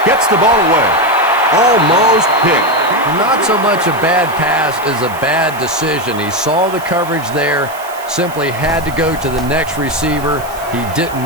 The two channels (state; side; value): noise; right; hiss, 18 dB below the sound